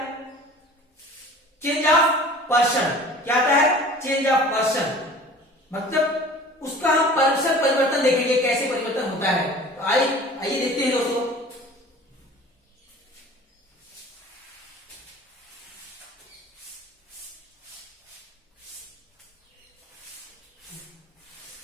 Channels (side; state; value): both; normal; correlation 0.44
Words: चेंज ऑफ पर्सन। क्या आता है, चेंज ऑफ पर्सन, मतलब उसका हम पर्सन परिवर्तन देखेंगे, कैसे परिवर्तन होता है। तो आइए देखते हैं दोस्तों।